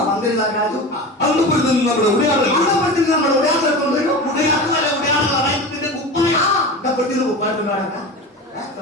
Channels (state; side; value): normal; both; correlation 0.29